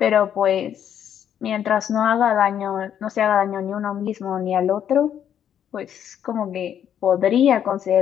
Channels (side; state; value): right; quieter; 9.4 dB